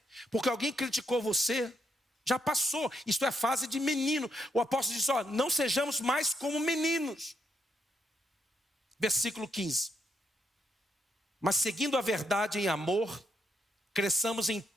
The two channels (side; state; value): both; normal; correlation 0.76